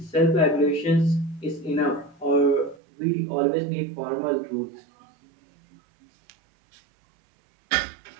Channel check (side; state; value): left; drops out; at 2.8 s